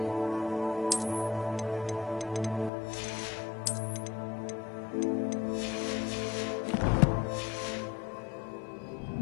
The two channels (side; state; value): right; drops out; at 2.7 s